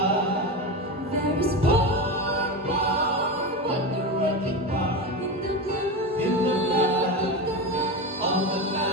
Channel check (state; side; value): normal; both; correlation 0.20